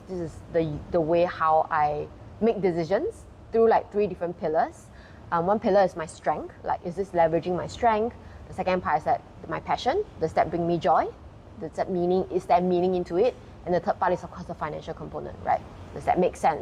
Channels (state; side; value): identical; both; correlation 1.00